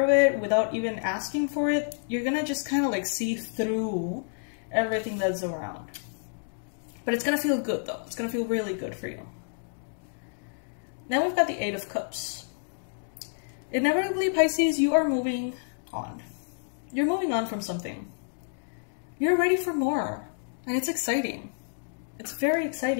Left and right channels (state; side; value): silent; right; digital silence